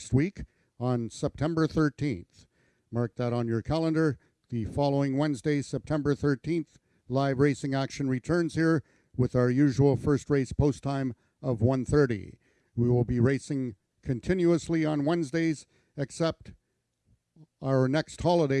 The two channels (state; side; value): identical; both; correlation 1.00